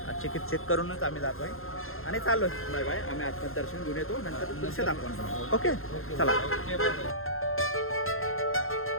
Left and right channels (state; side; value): late; right; 0.61 ms